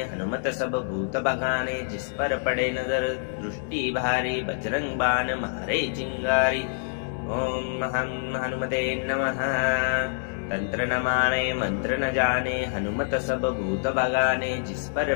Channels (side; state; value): right; silent; digital silence